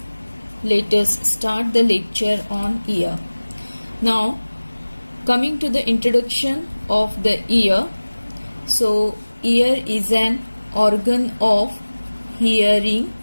let us start the lecture on ear. Now coming to the introduction of the ear. So ear is an organ of hearing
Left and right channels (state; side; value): inverted; both; correlation -1.00